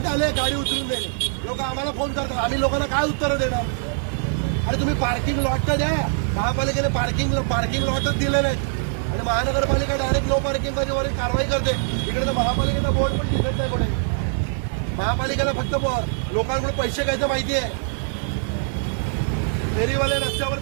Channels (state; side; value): silent; left; digital silence